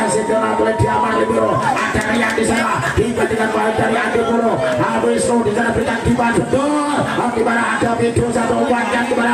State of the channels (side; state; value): both; identical; correlation 1.00